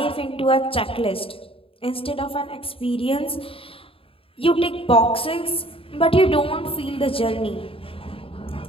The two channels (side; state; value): right; late; 0.27 ms